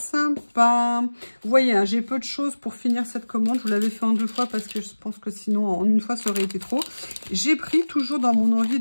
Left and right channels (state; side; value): inverted; both; correlation -1.00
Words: Vous voyez, hein, j'ai peu de choses pour finir cette commande. Je vous l'avais fait en 2 fois parce que je pense que sinon, en une fois, ça aurait été trop. J'ai pris, toujours dans mon envie